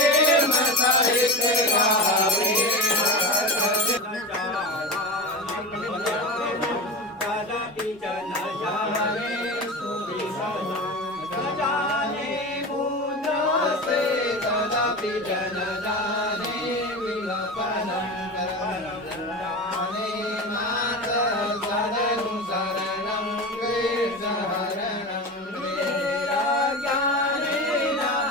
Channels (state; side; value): normal; both; correlation 0.25